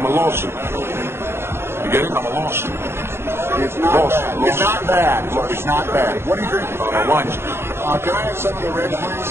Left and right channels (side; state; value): left; late; 0.12 ms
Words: a lawsuit. You get it? I'm a lawsuit. It's not bad. It's not bad. Look, it's not bad. What do you drink? Wine. Can I have some of the red,